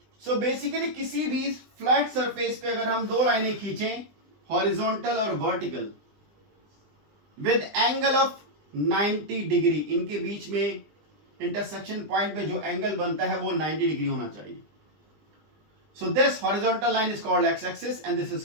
सो बेसिकली किसी भी फ्लैट सरफेस पे अगर हम दो लाइनें खींचें, हॉरिजॉन्टल और vertical, with angle of 90 degree, इनके बीच में इंटरसेक्शन पॉइंट पे जो एंगल बनता है वो 90 डिग्री होना चाहिए। So this horizontal line is called X axis and this is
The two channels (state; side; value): late; left; 20 ms